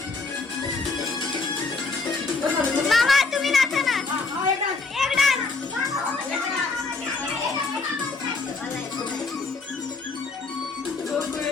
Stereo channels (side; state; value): right; quieter; 4.1 dB